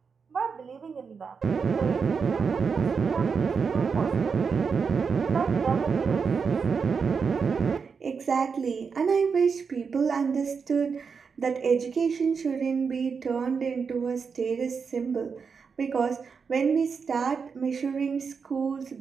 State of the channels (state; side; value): quieter; left; 5.7 dB